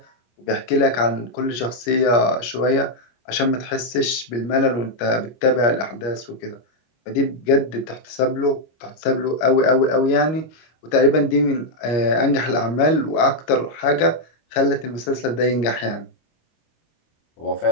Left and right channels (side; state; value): right; late; 25 ms